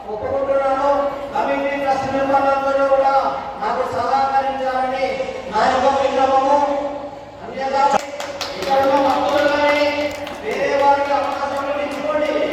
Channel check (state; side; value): identical; both; correlation 1.00